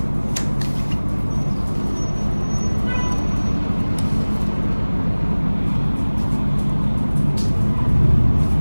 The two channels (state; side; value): inverted; both; correlation -1.00